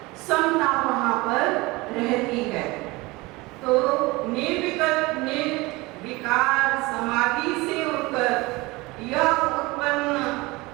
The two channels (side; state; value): left; quieter; 22.5 dB